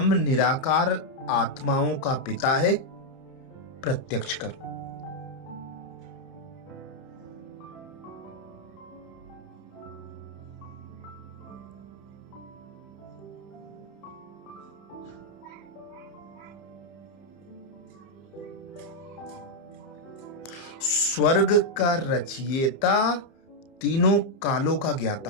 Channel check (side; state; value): right; late; 30 ms